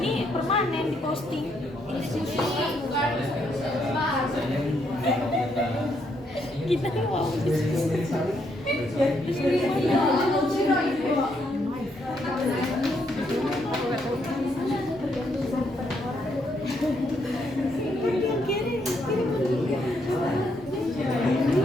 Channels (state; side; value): normal; both; correlation 0.75